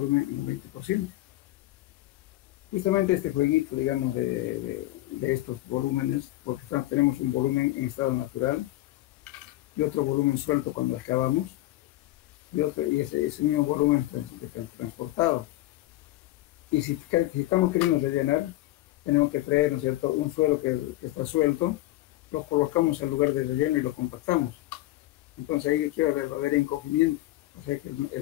en un 20%. Justamente este jueguito, digamos, de estos volúmenes, porque tenemos un volumen en estado natural y otro volumen suelto cuando excavamos, y ese mismo volumen transportado. Y si estamos queriendo rellenar, tenemos que traer, ¿no es cierto?, un suelo que está suelto, lo colocamos en lugar de relleno y lo compactamos. Entonces ahí va a haber encogimiento, o sea que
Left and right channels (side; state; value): right; quieter; 16.8 dB